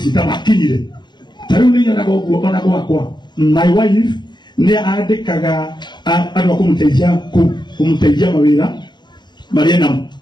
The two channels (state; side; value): late; right; 0.21 ms